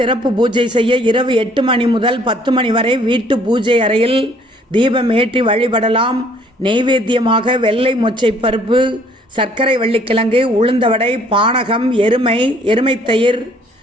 பூஜை செய்ய இரவு 8 மணி முதல் 10 மணி வரை வீட்டு பூஜை அறையில் தீபம் ஏற்றி வழிபடலாம். நெய்வேத்தியமாக வெள்ளை மொச்சை பருப்பு, சர்க்கரை வள்ளிக்கிழங்கு, உளுந்தவடை, பானகம், எருமை தயிர்,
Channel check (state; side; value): normal; both; correlation 0.60